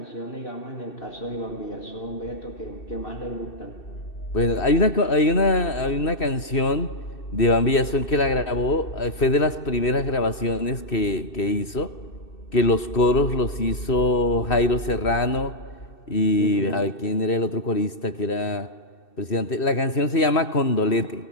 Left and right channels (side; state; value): right; late; 2.7 ms